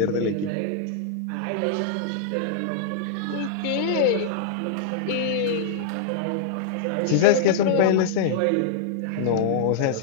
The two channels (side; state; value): both; different; correlation -0.01